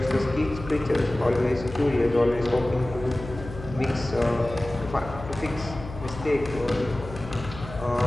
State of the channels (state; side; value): noise; left; hum, 12 dB below the sound